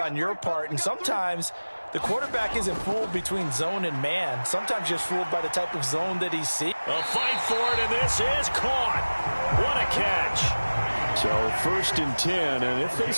your part. And sometimes the quarterback isn't fooled between zone and man. Sometimes just fooled by the type of zone that he sees. A fight for it, and this is caught. What a catch. So 1st and 10, and if they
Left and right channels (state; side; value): inverted; both; correlation -1.00